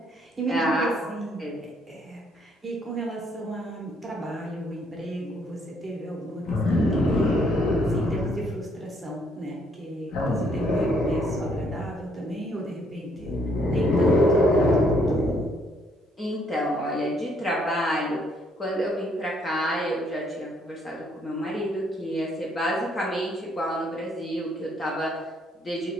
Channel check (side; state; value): both; normal; correlation 0.68